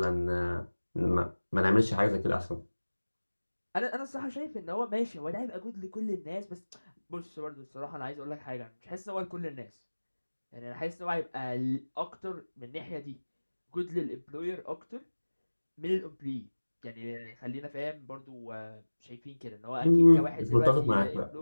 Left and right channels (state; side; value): inverted; both; correlation -1.00